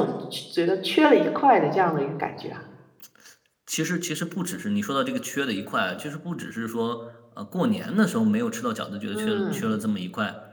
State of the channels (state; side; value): identical; both; correlation 1.00